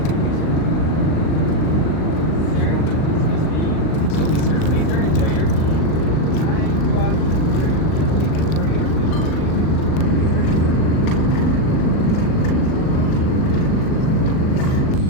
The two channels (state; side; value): late; right; 39 ms